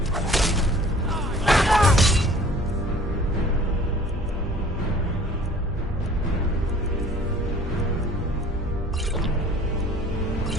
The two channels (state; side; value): normal; both; correlation 0.50